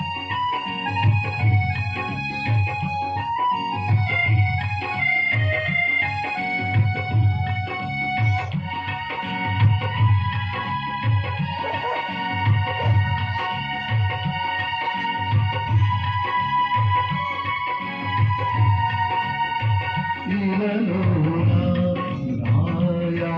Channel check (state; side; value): identical; both; correlation 1.00